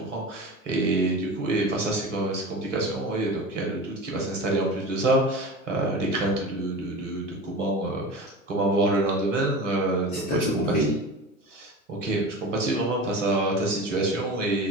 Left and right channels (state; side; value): normal; both; correlation 0.32